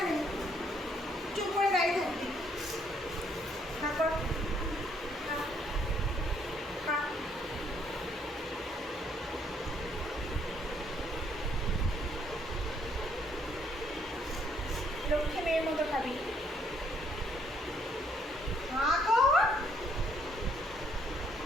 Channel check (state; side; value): normal; both; correlation 0.68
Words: চুপ করে দাঁড়িয়ে থাকবি। খা কর, খা, খা। লক্ষ্মী মেয়ের মতো খাবি। খা কর।